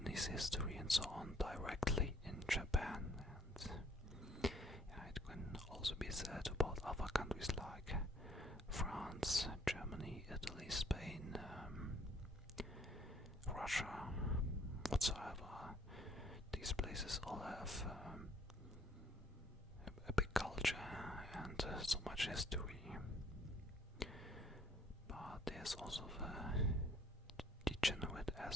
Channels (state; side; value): normal; both; correlation 0.62